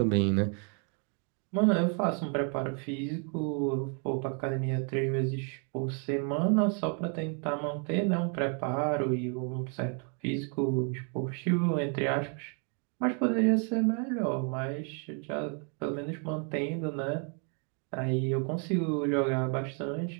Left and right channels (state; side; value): quieter; left; 39.8 dB